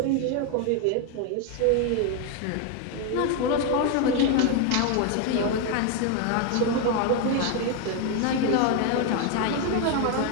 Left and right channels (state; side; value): different; both; correlation 0.01